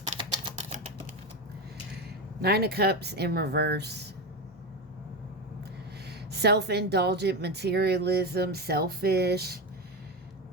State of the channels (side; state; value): both; normal; correlation 0.17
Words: Nine of Cups in reverse. Self-indulgent materialism, selfish.